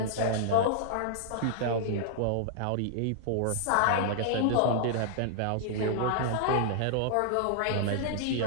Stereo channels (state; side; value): different; both; correlation -0.01